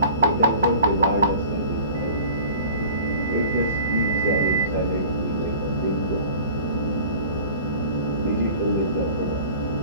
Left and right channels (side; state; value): both; inverted; correlation -0.43